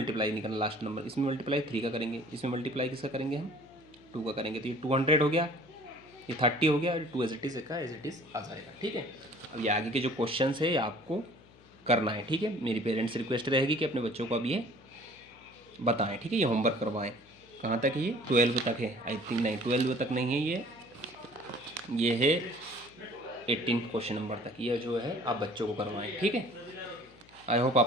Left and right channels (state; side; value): noise; left; hum, 26 dB below the sound